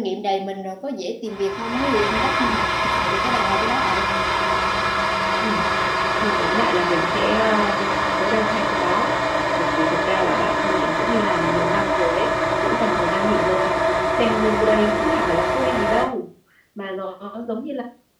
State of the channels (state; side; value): identical; both; correlation 1.00